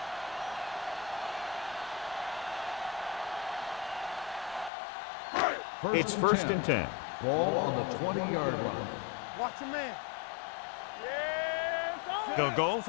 It's first and 10. Ball on the 20-yard line. Watch your man. They'll go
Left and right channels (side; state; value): right; drops out; at 4.7 s